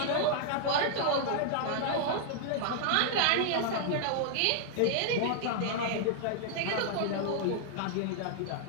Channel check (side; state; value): both; different; correlation -0.01